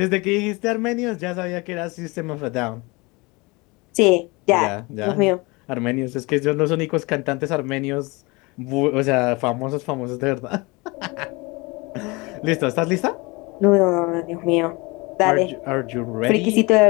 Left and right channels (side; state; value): right; quieter; 25.6 dB